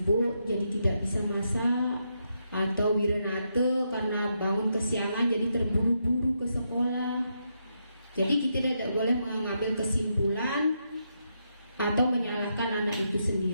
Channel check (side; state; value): both; inverted; correlation -0.81